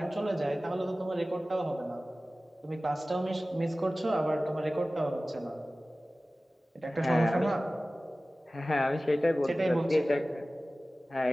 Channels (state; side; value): normal; both; correlation 0.97